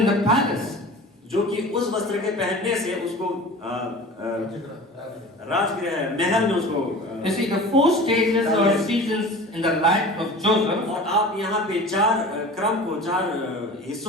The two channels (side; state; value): both; normal; correlation 0.38